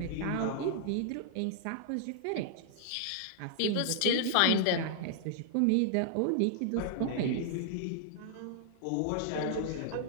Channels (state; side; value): different; both; correlation -0.01